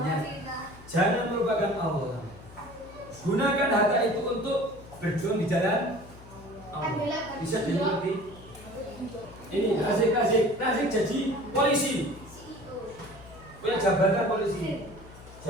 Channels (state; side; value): noise; left; hum, 19 dB below the sound